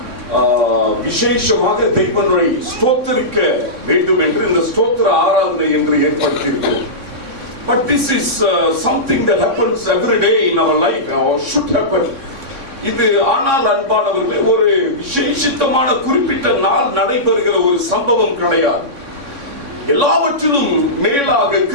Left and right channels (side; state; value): left; late; 3.6 ms